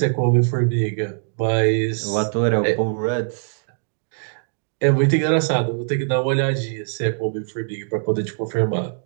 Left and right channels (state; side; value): silent; left; digital silence